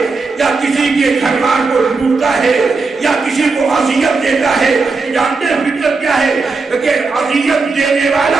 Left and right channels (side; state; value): left; quieter; 4.1 dB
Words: یا کسی کے گھر بار کو لوٹتا ہے، یا کسی کو اذیت دیتا ہے، جانتے ہیں فطرت کیا ہے؟ کہ اذیت دینے